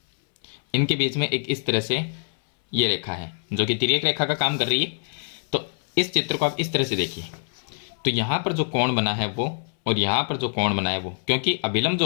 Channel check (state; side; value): silent; right; 62 dB below the other